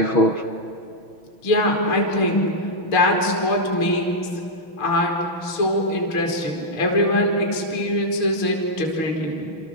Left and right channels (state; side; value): late; right; 6.1 ms